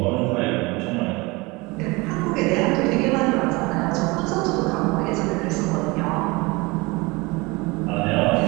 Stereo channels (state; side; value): quieter; left; 24.3 dB